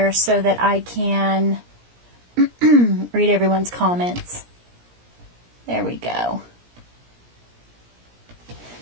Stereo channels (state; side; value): late; left; 17 ms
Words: so that I can read everyone's comments. There we go.